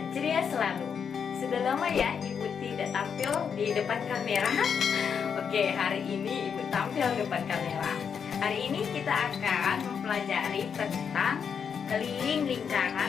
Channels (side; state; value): right; quieter; 6.9 dB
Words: ceria selalu. Sudah lama ya Ibu tidak tampil di depan kamera. Oke, hari ini Ibu tampil di depan kamera. Hari ini kita akan mempelajari tentang keliling